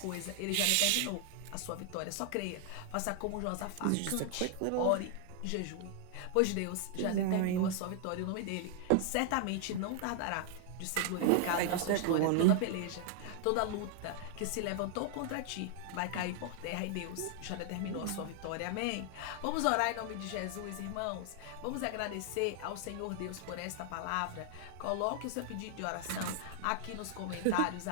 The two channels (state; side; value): different; both; correlation 0.00